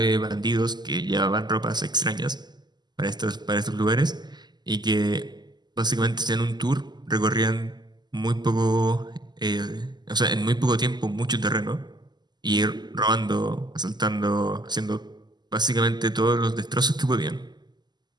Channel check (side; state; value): left; late; 0.21 ms